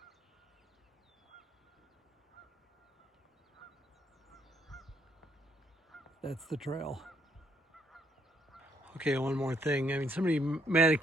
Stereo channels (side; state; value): both; normal; correlation 0.70